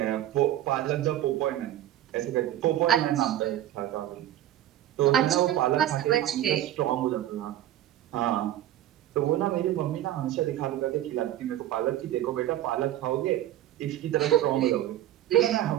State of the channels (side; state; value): left; quieter; 12.8 dB